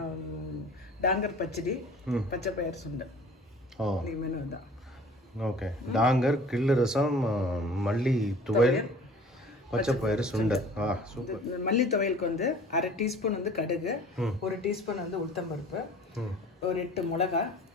டாங்கர் பச்சடி, பச்சை பயிர் சுண்டல். இன்னைக்கு மெனு தான். ஓகே, டாங்கர், கிள்ளு ரசம், மல்லி துவையல், பச்சை பயிறு சுண்டல். சூப்பர். மல்லி துவையலுக்கு வந்து 1/2 டீஸ்பூன் வந்து கடுகு, 1 டீஸ்பூன் வந்து உளுத்தம்பருப்பு, ஒரு 8 மிளகா,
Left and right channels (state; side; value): normal; both; correlation 0.47